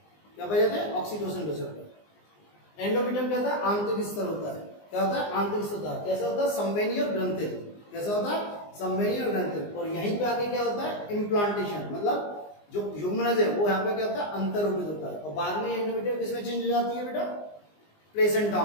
क्या पाए जाते हैं? Oxytocin receptor. एंडोमेट्रियम क्या होता है? आंतरिक स्तर होता है। क्या होता है? आंतरिक स्तर होता है। कैसा होता है? संवहनी और ग्रंथिल। कैसा होता है? संवहनी और ग्रंथिल। और यहीं पे आके क्या होता है? इम्प्लांटेशन, मतलब जो युग्मनज है वो यहाँ पे क्या होता है? अंतर्रोपित होता है। और बाद में एंडोमेट्रियम किसमें चेंज हो जाती है बेटा? प्लेसेंटा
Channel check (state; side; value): late; right; 19 ms